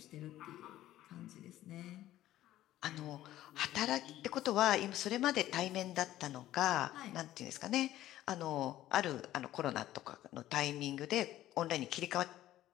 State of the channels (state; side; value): quieter; right; 14.0 dB